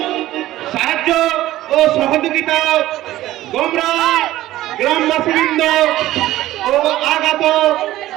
সাহায্য ও সহযোগিতা গৌড়া গ্রামবাসীবৃন্দ ও আগত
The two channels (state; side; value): quieter; left; 15.2 dB